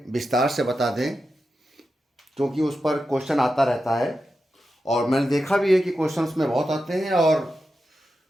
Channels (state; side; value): normal; both; correlation 0.90